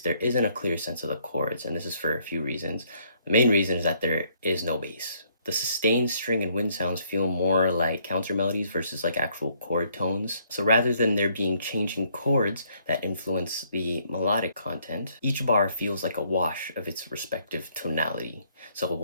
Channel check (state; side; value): inverted; both; correlation -0.67